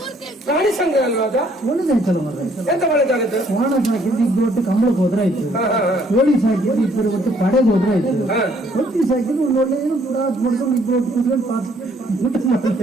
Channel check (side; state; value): both; normal; correlation 0.64